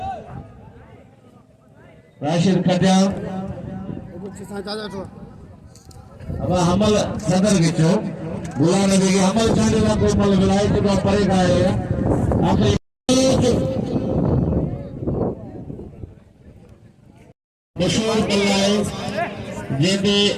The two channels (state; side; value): identical; both; correlation 1.00